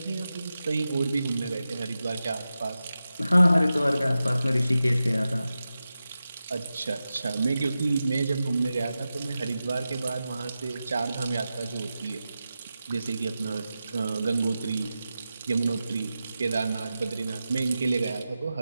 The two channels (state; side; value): inverted; both; correlation -0.92